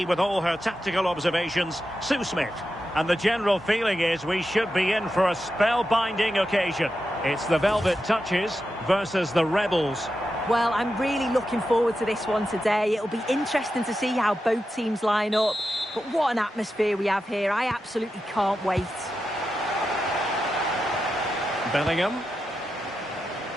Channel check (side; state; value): both; normal; correlation 0.89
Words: with all her tactical observations, Sue Smith. And the general feeling is we should be in for a spellbinding occasion. It's the Velvet Touches versus the Rebels. Well, I'm really looking forward to this one today. It'll be interesting to see how both teams line up. But what an atmosphere we have here. I absolutely can't wait. Bellingham.